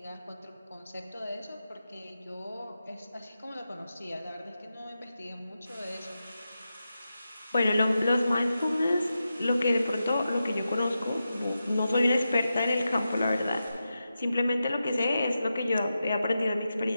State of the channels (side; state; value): both; inverted; correlation -0.90